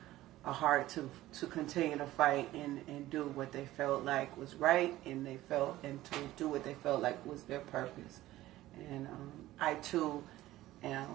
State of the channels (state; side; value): quieter; left; 15.8 dB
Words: a heart to continue to fight and do what they felt like was right, and to do what they felt like was their purpose. And I too